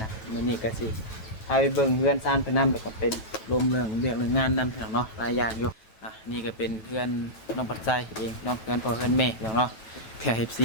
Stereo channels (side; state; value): right; late; 9.2 ms